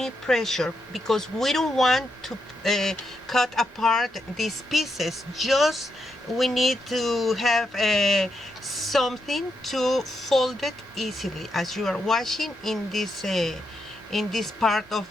pressure, because we don't want to cut apart these pieces. Just we need to have something to fold it easily, as you are watching in this part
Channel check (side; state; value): both; normal; correlation 0.83